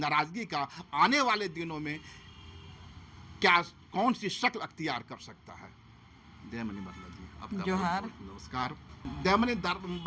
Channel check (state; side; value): identical; both; correlation 1.00